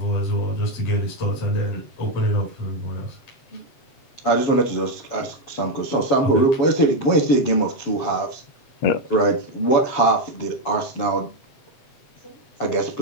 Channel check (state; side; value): late; right; 7.2 ms